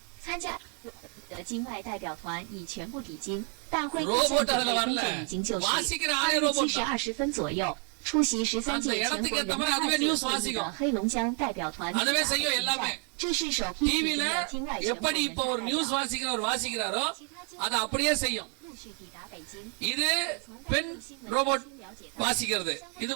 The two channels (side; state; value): left; quieter; 37.8 dB